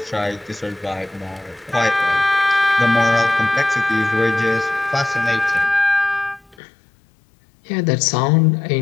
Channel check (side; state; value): right; drops out; at 6.6 s